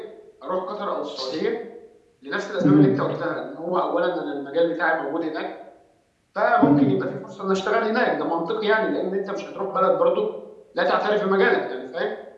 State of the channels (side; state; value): both; identical; correlation 1.00